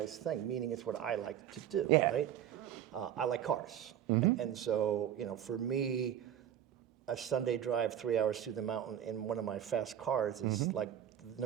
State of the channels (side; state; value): left; quieter; 10.3 dB